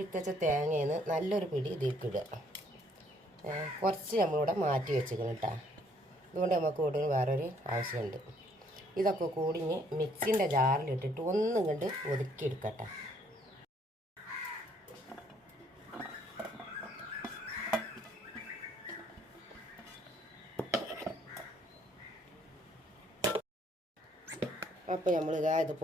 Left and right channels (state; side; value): normal; both; correlation 0.65